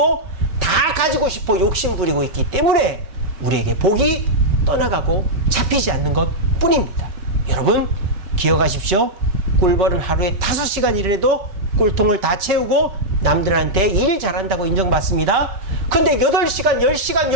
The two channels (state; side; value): late; left; 5.2 ms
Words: 다 가지고 싶어 욕심 부리고 있기 때문에 우리에게 복이 떠나가고 잡히지 않는 것 뿐입니다. 여러분 기억하십시오. 꿀벌은 하루에 5시간 일을 해도 꿀통을 다 채우고 남들한테 일 잘한다고 인정받습니다. 근데 8시간, 10시간,